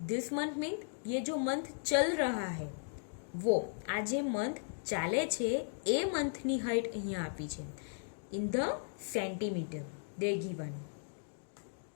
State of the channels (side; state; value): right; silent; digital silence